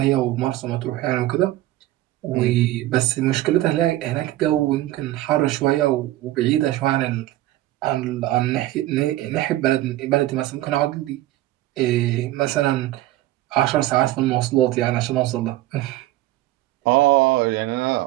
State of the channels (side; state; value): left; quieter; 15.9 dB